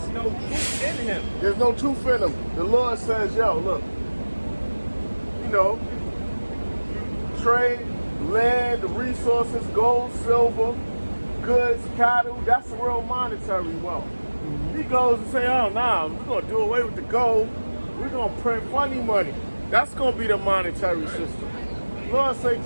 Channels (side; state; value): both; inverted; correlation -1.00